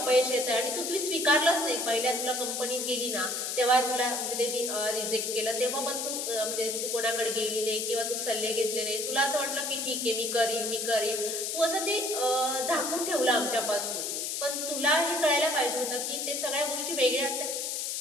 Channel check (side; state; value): left; noise; hiss, 2 dB below the sound